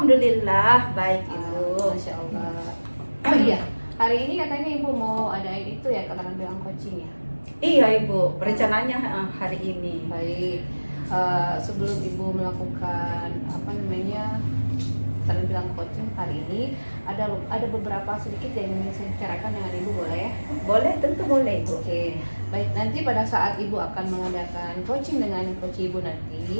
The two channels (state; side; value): inverted; both; correlation -1.00